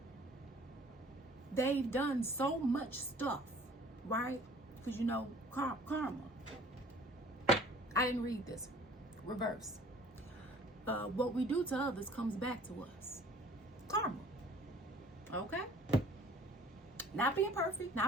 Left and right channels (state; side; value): normal; both; correlation 0.51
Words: they've done so much stuff, right? Because you know, karma. I didn't read this. Reverse. What we do to others comes back to us. Karma. Okay? Not being perfect,